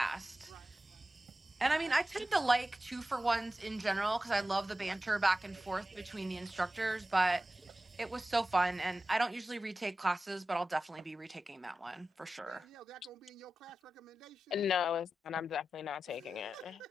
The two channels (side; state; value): both; normal; correlation 0.94